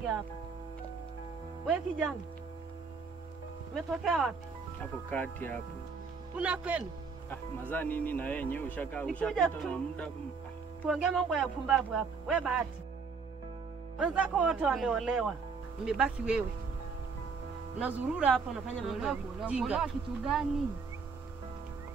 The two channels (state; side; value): quieter; left; 5.1 dB